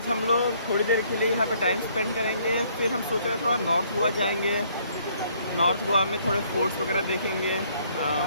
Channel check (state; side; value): inverted; both; correlation -0.64